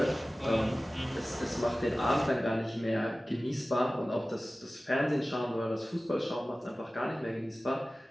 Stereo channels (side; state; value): both; normal; correlation 0.97